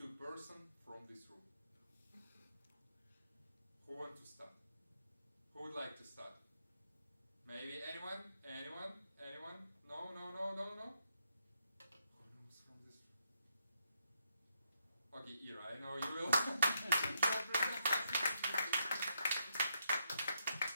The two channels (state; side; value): inverted; both; correlation -0.78